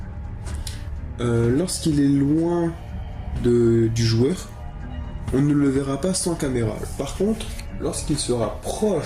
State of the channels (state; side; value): identical; both; correlation 1.00